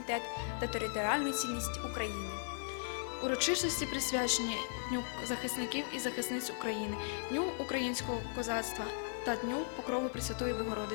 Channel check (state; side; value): silent; right; 53 dB below the other